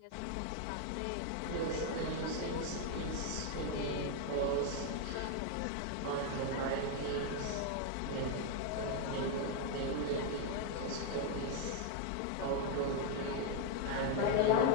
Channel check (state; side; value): different; both; correlation 0.01